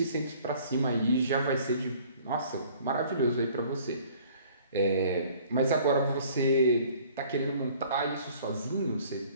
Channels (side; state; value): both; inverted; correlation -0.54